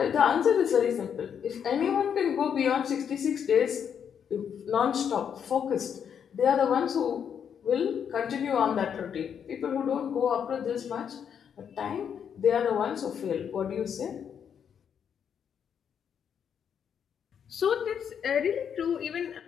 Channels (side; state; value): right; quieter; 7.9 dB